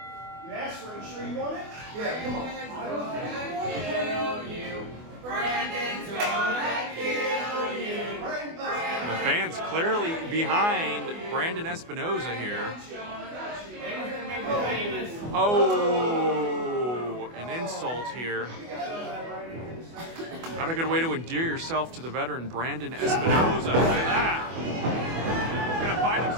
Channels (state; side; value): late; left; 24 ms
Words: asked for it. You sure you want it? Yeah, come on. Kill you. Brandon's gonna kill you. The fans clearly behind Brandon Espinoza here. Oh, an insult here. Not a good way to endear yourself to the veteran Brandon Espinoza. Look at that. He's going to find